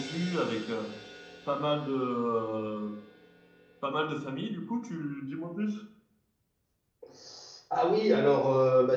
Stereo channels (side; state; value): both; identical; correlation 1.00